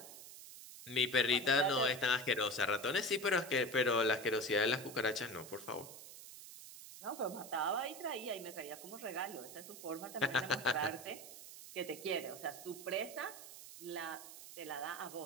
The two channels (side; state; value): right; noise; hiss, 14 dB below the sound